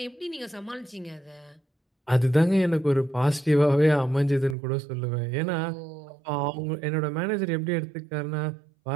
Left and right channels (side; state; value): left; drops out; at 4.5 s